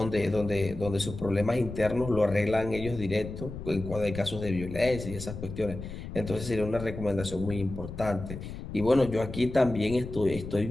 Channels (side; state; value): left; noise; rumble, 9 dB below the sound